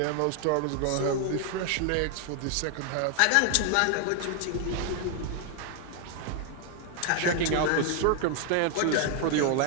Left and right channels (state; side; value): different; both; correlation 0.00